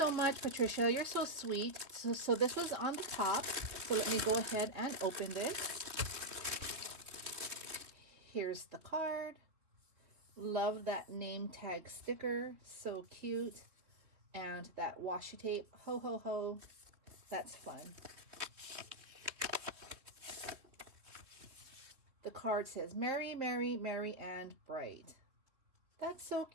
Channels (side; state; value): left; late; 3.3 ms